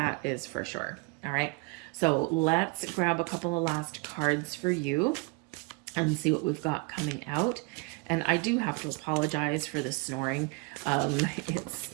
is for sure. All right. So let's grab a couple of last cards for you and see what we've got coming out. And I do have to apologize for the snoring.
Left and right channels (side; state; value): left; quieter; 29.2 dB